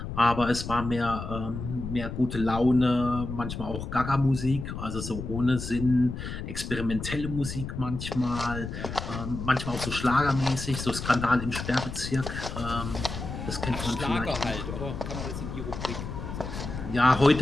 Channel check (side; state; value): left; noise; rumble, 7 dB below the sound